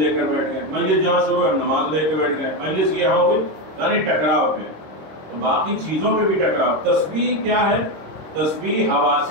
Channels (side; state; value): left; late; 26 ms